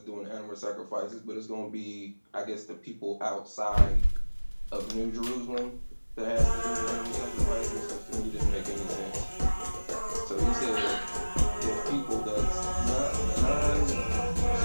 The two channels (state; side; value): inverted; both; correlation -1.00